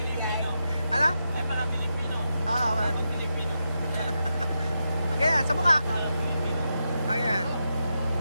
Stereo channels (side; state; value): both; inverted; correlation -0.87